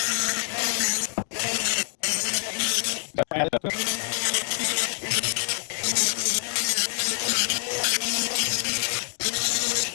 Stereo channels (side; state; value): right; silent; 61 dB below the other